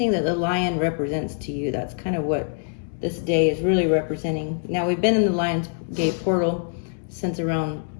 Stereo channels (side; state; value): right; silent; 63 dB below the other